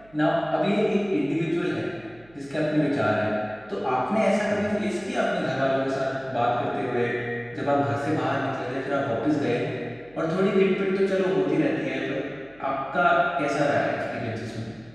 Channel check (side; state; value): right; noise; hum, 28 dB below the sound